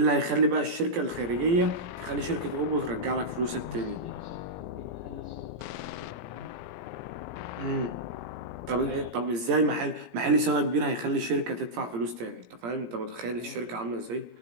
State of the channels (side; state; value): left; late; 17 ms